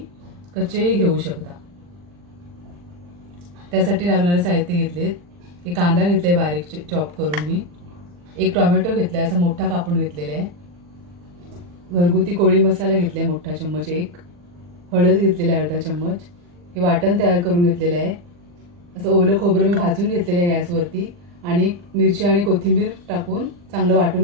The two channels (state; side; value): late; left; 40 ms